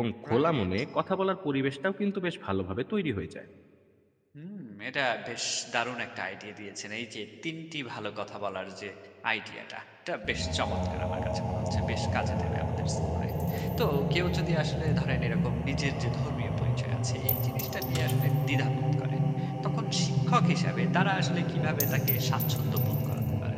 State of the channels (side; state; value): both; identical; correlation 1.00